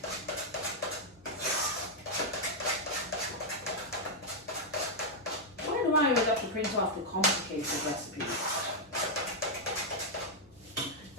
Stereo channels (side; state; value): both; normal; correlation -0.04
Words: I would have to print off the complicated recipes.